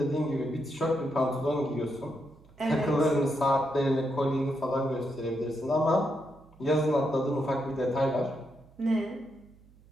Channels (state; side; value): noise; right; hum, 26 dB below the sound